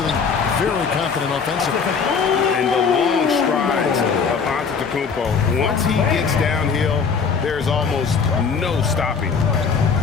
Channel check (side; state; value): right; quieter; 5.7 dB